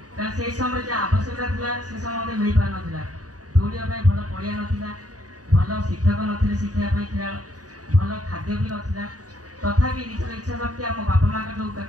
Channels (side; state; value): left; late; 0.68 ms